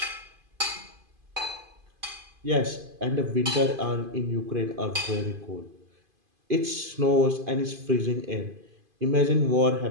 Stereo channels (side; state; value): left; late; 2.5 ms